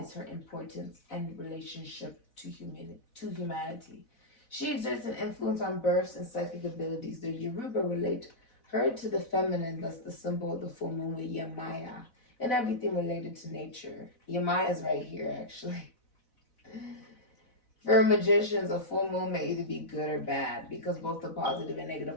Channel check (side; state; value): right; late; 4.0 ms